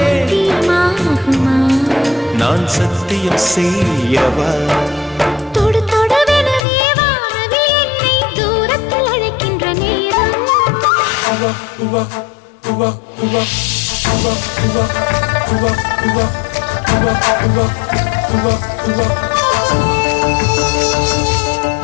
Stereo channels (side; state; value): right; drops out; at 6.6 s